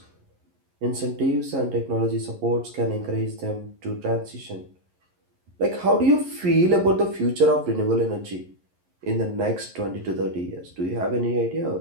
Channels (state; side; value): late; left; 11 ms